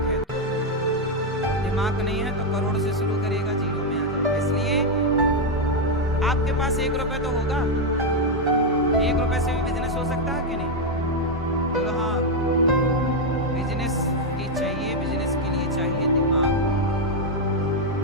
है तो। दिमाग नहीं है तो करोड़ से शुरू करेगा, जीरो में आ जाएगा। इसलिए आपके पास 1 रुपए तो होगा। 1 रुपए से भी बिजनेस हो सकता है कि नहीं? बोलो हाँ, बिजनेस की चाहिए। बिजनेस के लिए चाहिए दिमाग।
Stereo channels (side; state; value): both; normal; correlation 0.02